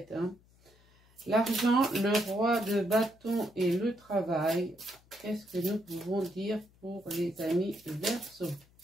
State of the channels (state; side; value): noise; left; hum, 29 dB below the sound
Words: hein. L'argent, le roi de bâton et le travail. Qu'est-ce que nous pouvons dire pour les amis Verseau?